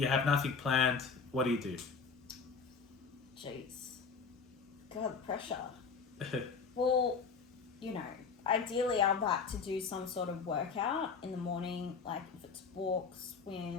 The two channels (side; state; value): right; quieter; 5.3 dB